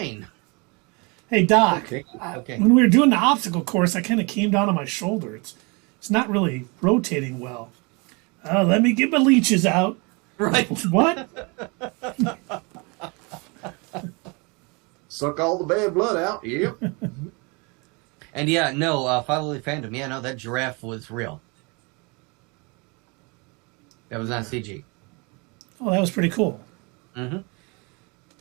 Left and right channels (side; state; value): left; quieter; 29.8 dB